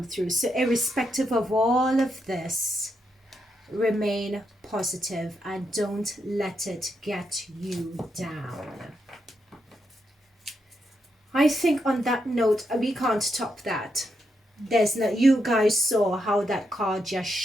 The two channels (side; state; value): both; normal; correlation 0.82